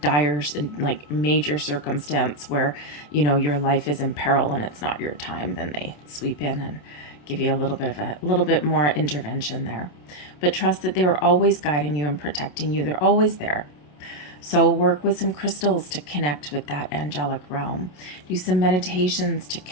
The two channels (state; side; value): late; right; 27 ms